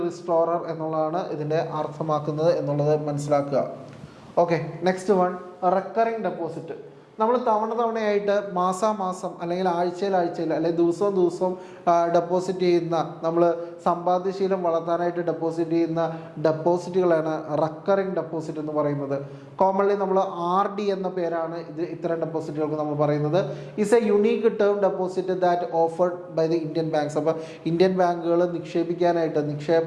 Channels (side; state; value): both; identical; correlation 1.00